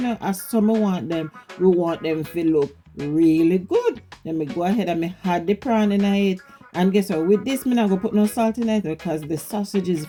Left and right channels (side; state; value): both; identical; correlation 1.00